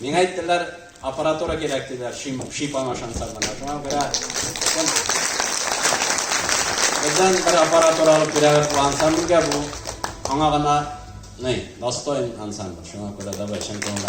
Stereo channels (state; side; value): identical; both; correlation 1.00